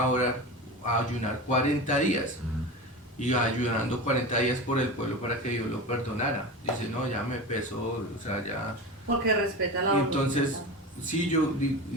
a ayunar 40 días. Y ayunando 40 días por el pueblo para que Dios lo perdonara. Dice, no, ya me pesó, o sea, ya... Porque respeta la Y entonces, sí,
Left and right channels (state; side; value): normal; both; correlation 0.27